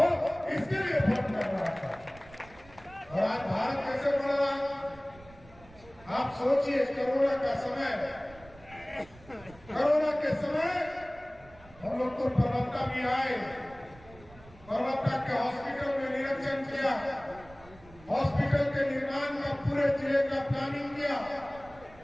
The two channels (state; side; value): noise; right; rumble, 22 dB below the sound